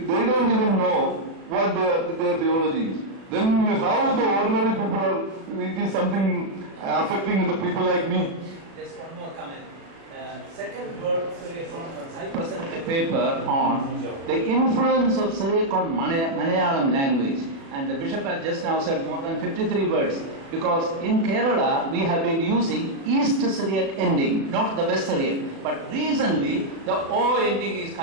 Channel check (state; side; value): late; left; 36 ms